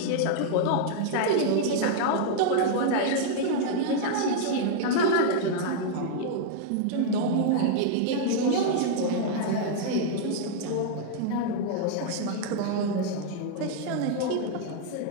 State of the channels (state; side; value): different; both; correlation -0.01